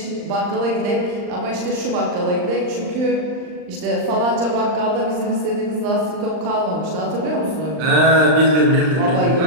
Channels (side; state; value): left; late; 39 ms